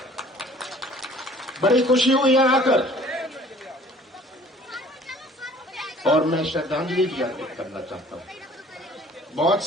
बड़ी खुशी हुई यहाँ आकर और मैं श्रद्धांजलि भी अर्पित करना चाहता हूं। बहुत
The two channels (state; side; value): normal; both; correlation 0.52